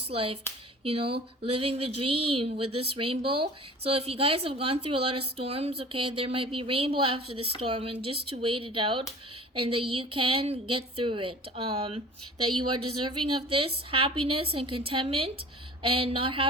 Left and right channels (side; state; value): both; normal; correlation 0.42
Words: life, living the dream with this rainbow. So if you guys have gone through a lot of storms, okay, there might be rainbow after the storm, and just to wait it out and that you can get through it. That you are deserving of this happiness and contentment, and not